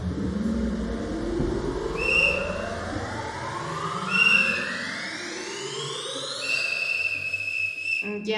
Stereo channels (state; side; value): identical; both; correlation 1.00